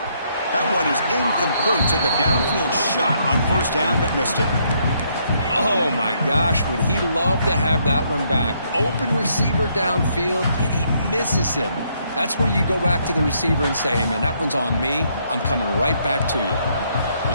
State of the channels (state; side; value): inverted; both; correlation -0.72